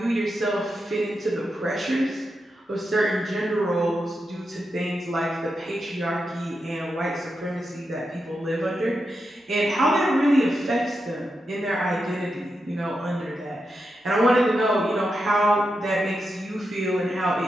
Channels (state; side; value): normal; both; correlation 0.87